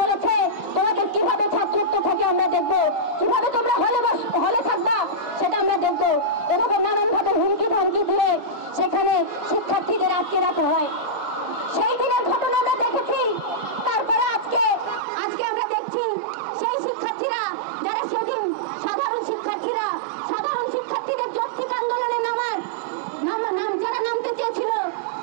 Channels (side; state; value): left; drops out; at 15.0 s